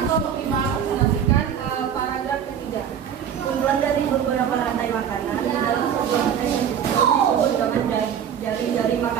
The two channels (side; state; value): left; quieter; 8.6 dB